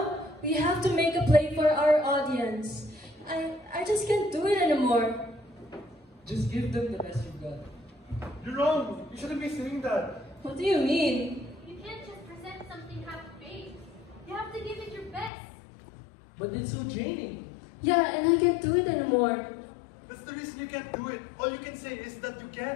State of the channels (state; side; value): drops out; right; at 15.3 s